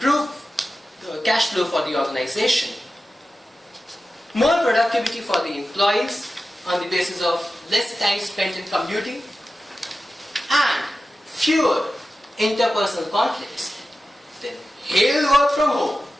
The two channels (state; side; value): normal; both; correlation 0.94